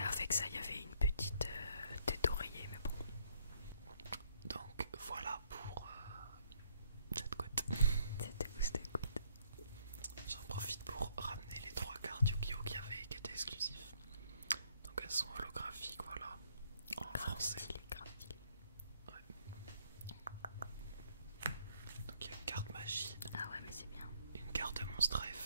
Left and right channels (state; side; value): inverted; both; correlation -0.67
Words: avec ça, il y avait une petite tête d'oreiller, mais bon. Donc voilà pour cette couette. C'était où c'était good. J'en profite pour ramener les 3 cartes Yu-Gi-Oh qui étaient exclusifs. Donc elles sont holographiques, voilà, en français. Stylé, grave stylé. Ouais. Donc il y a une carte magie, Ah ouais, mais c'est bien. une carte monstre à